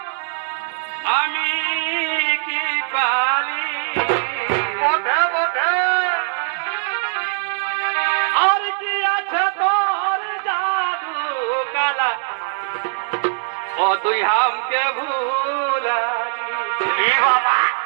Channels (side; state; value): left; silent; digital silence